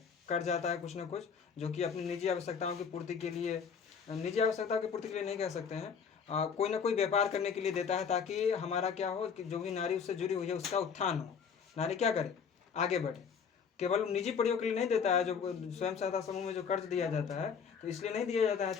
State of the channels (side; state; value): right; quieter; 6.5 dB